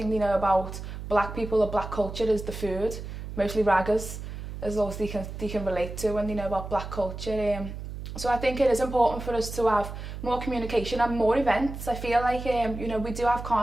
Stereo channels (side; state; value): right; noise; hum, 9 dB below the sound